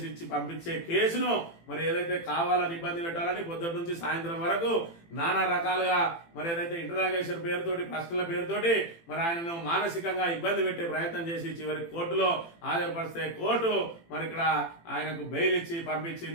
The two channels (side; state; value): right; late; 18 ms